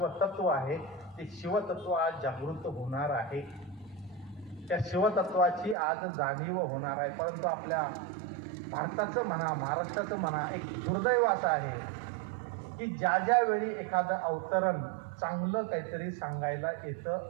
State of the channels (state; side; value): drops out; left; at 5.8 s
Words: आहे, ते शिवतत्व आज जागृत होणार आहे. त्या शिवतत्वाची आज जाणीव होणार आहे. परंतु आपल्या भारताचं म्हणा, महाराष्ट्राचं म्हणा, एक दुर्दैव असं आहे की ज्या वेळी एखादं अवतरण चांगलं काहीतरी सांगायला